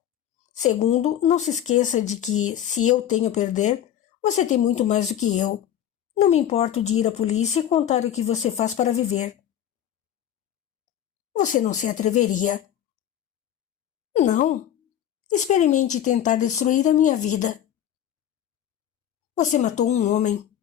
Segundo, não se esqueça de que, se eu tenho a perder, você tem muito mais do que eu. Não me importo de ir à polícia e contar o que você faz para viver. Você não se atreveria. Não. Experimente tentar destruir a minha vida. Você matou um homem.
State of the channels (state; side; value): quieter; right; 10.7 dB